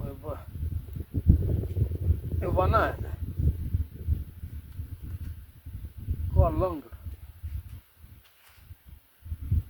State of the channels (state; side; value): identical; both; correlation 1.00